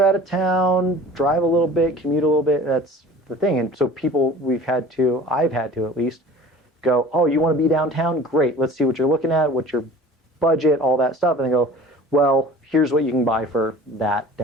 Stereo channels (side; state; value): both; normal; correlation 0.43